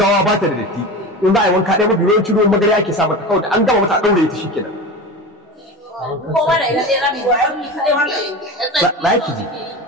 ba ta da datti, in za a yi wanka ɗaya mafi yawancin ruwan magana ake sa mata, kawai da an gama mata a ɗaure ta shikenan. Ba ki ji.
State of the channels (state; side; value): normal; both; correlation 0.28